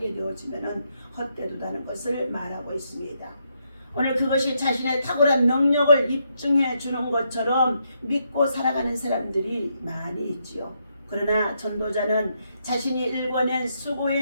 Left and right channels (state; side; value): inverted; both; correlation -0.78